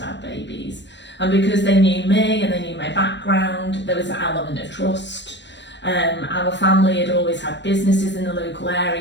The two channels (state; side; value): late; right; 0.52 ms